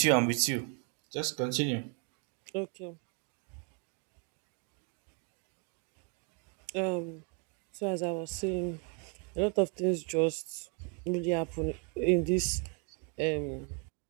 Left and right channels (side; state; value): left; quieter; 35.4 dB